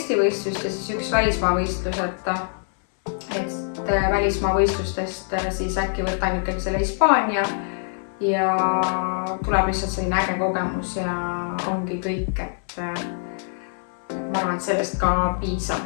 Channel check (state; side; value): silent; right; 63 dB below the other